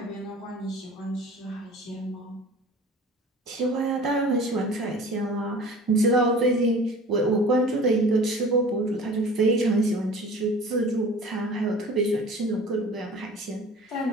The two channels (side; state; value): both; normal; correlation 0.42